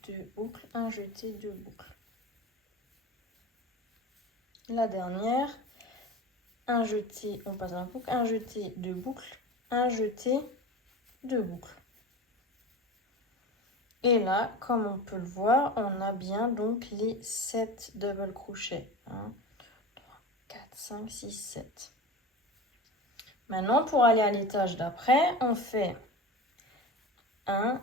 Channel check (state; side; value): normal; both; correlation 0.31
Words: 2 boucles, un jeté, 2 boucles. La dernière, un jeté, on passe dans la boucle, un jeté, 2 boucles, un jeté, 2 boucles. Et là, comme on peut le voir, on a bien donc les 7 double crochets. 1, 3, 4, 5, 6, 7. Maintenant, pour aller à l'étage d'après, on fait 1,